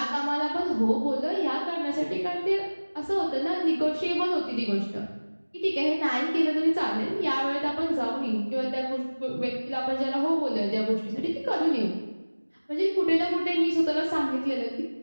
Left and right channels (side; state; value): both; inverted; correlation -1.00